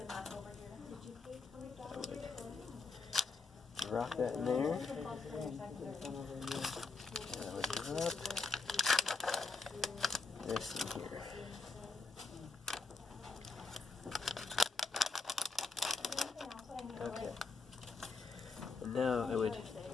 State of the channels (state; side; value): quieter; right; 4.1 dB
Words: I would drop that in there. And I would drop this in here. Okay. And now I would